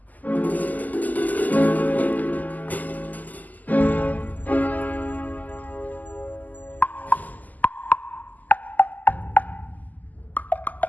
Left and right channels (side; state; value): right; late; 0.081 ms